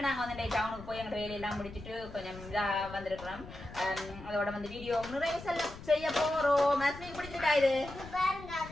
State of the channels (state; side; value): noise; left; rumble, 14 dB below the sound